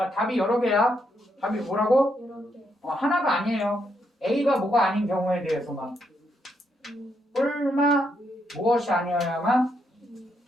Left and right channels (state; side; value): normal; both; correlation 0.78